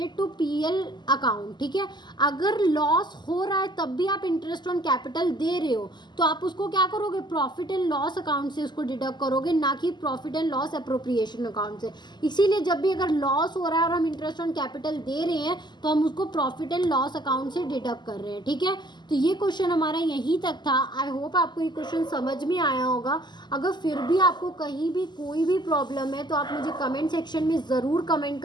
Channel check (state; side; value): late; right; 0.21 ms